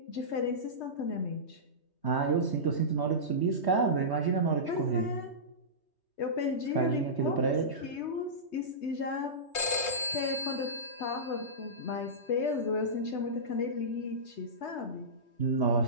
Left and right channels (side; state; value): right; late; 3.2 ms